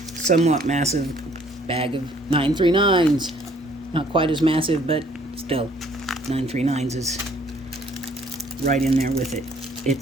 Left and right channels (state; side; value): normal; both; correlation 0.61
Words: somewhat massive bag of 939s. Not quite as massive, but still, 939s is right in there with it.